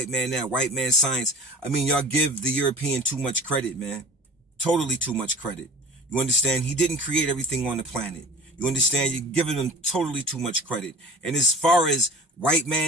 man that, white man science. I mean, y'all give the European too much credit, man. Totally too much credit. You understand? He didn't create everything on the planet. You understand? You're giving him totally too much credit. And as far as white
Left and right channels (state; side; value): normal; both; correlation 0.41